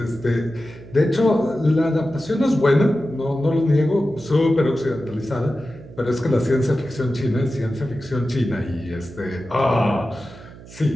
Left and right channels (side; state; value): right; noise; hum, 18 dB below the sound